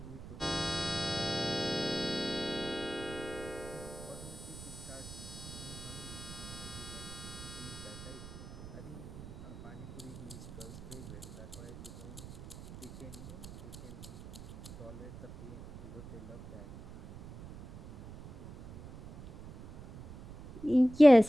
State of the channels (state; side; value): noise; right; rumble, 13 dB below the sound